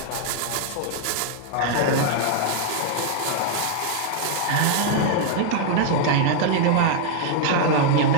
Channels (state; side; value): different; both; correlation -0.01